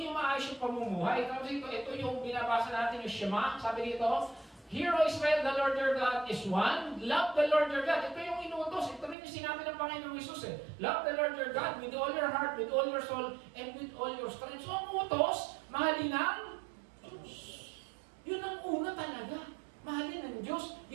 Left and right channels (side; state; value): left; drops out; at 9.2 s